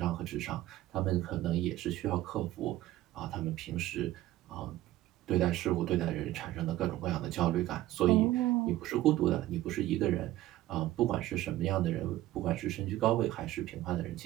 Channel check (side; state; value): left; quieter; 15.2 dB